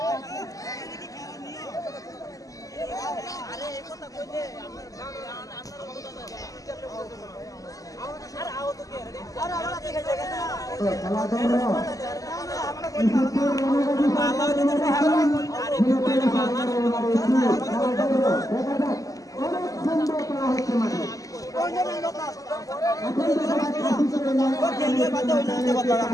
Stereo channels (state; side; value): late; right; 0.17 ms